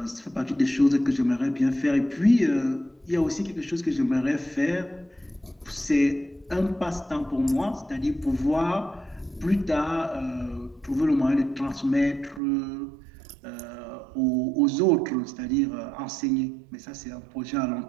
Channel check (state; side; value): drops out; left; at 12.4 s